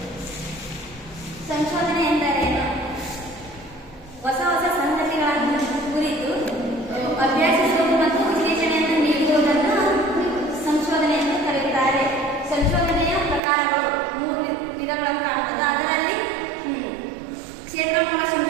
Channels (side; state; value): left; drops out; at 13.4 s